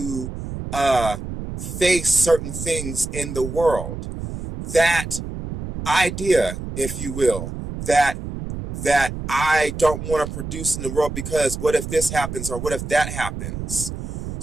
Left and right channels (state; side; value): noise; right; rumble, 7 dB below the sound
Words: face certain things in the world. That idea, if you will, that I don't want to produce in the world because what if this happens or what if that happens?